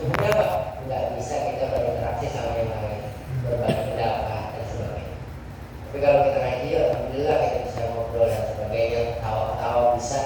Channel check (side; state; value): both; identical; correlation 1.00